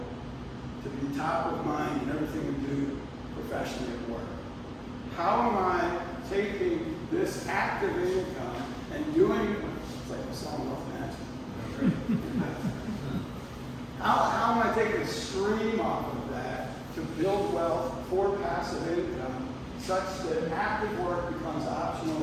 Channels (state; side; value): identical; both; correlation 1.00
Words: to be top of mind in everything we do professionally at work. How am I taking this active income and doing It's like a song off management. How am I taking a stream off of that to build wealth for passive income such that active work becomes